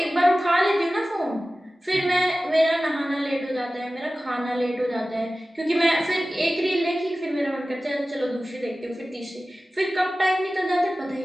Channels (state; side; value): normal; both; correlation 0.96